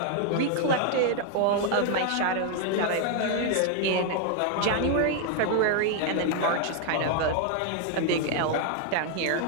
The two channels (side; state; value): both; different; correlation 0.00